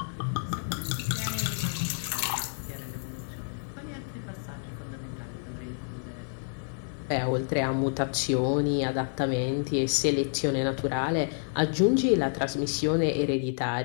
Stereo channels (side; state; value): right; silent; digital silence